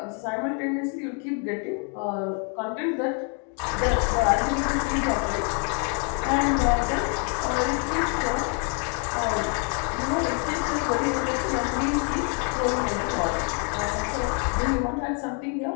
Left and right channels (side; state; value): right; quieter; 39.7 dB